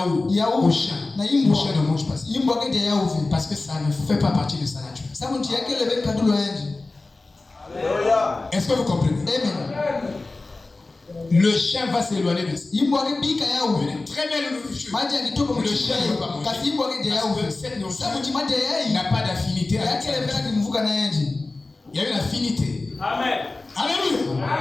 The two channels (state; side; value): quieter; right; 3.3 dB